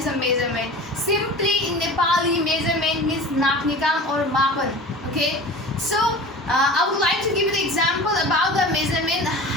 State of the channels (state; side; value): normal; both; correlation 0.36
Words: a measurement. Simply in Nepali, measurement means naknikam or mapan. Okay, so I would like to give you the example about the measurement,